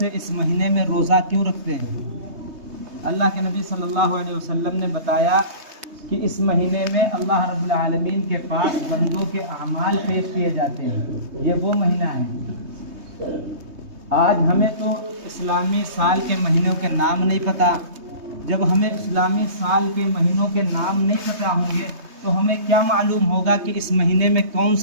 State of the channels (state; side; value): late; left; 3.2 ms